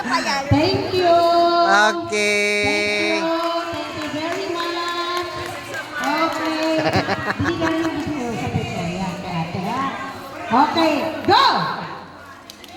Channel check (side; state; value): both; identical; correlation 1.00